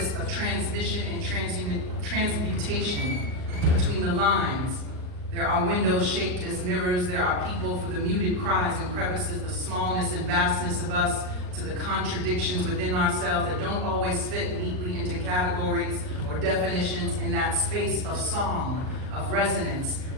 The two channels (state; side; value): late; left; 39 ms